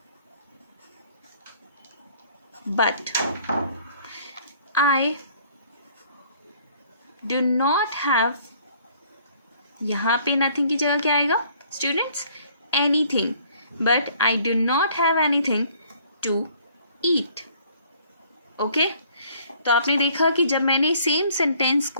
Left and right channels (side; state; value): both; inverted; correlation -0.59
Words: but I do not have, यहाँ पे nothing की जगह क्या आएगा students? anything, but I do not have anything to eat. Okay, तो आपने देखा कि जब मैंने सेम सेंटेंस